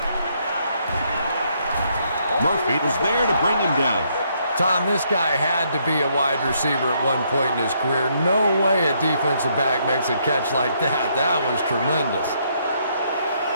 Murphy was there to bring him down. Tom, this guy had to be a wide receiver at one point in his career. No way a defensive back makes a catch like that. That was tremendous.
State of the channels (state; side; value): inverted; both; correlation -0.72